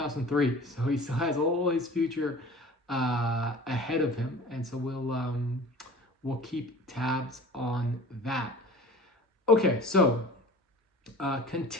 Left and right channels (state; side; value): normal; both; correlation 0.41